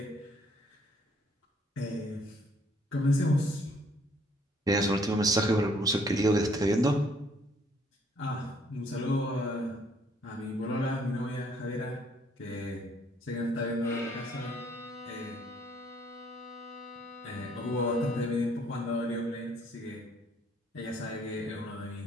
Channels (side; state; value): both; normal; correlation 0.64